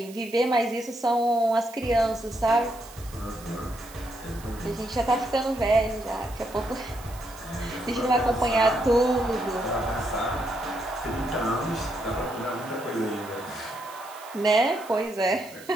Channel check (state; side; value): noise; right; hiss, 19 dB below the sound